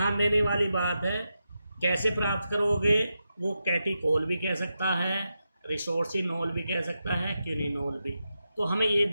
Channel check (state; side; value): inverted; both; correlation -0.88